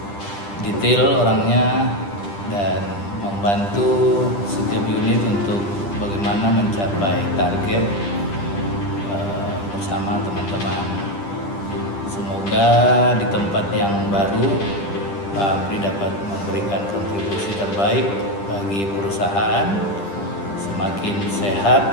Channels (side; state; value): right; late; 10 ms